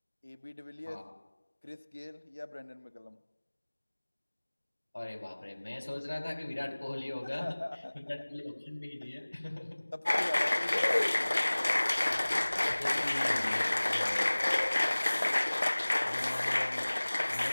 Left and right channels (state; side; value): inverted; both; correlation -1.00